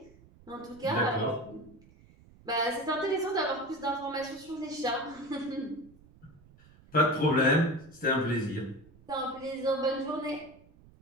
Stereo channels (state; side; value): noise; right; rumble, 25 dB below the sound